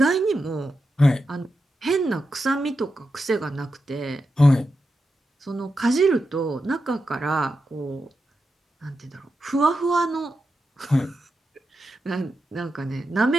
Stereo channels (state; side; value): normal; both; correlation 0.88